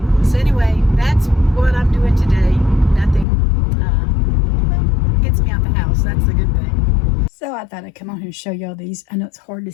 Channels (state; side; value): drops out; right; at 3.2 s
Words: So anyway, that's what I'm doing today. Nothing gets me out the house. That's the good thing. So I thought I'd come on here and show y'all these. I know it's hard to